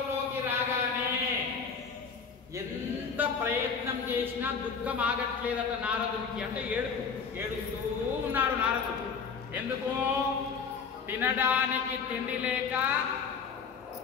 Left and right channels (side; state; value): right; quieter; 5.8 dB